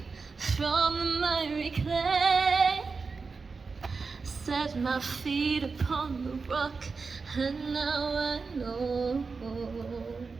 from the miry clay, set my feet upon the rock, and now I know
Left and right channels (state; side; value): quieter; left; 4.6 dB